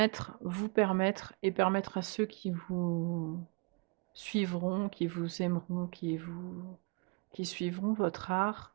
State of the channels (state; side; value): quieter; left; 31.1 dB